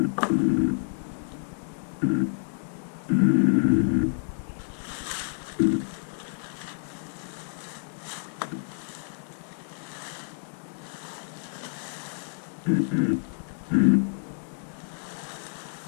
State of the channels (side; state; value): right; silent; digital silence